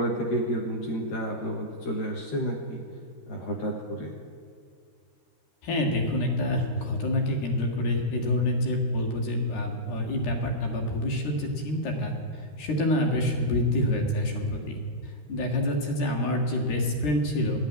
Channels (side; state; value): right; late; 13 ms